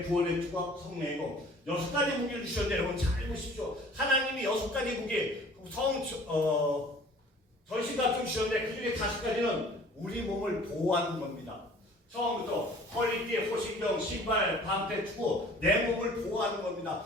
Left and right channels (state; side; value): normal; both; correlation 0.49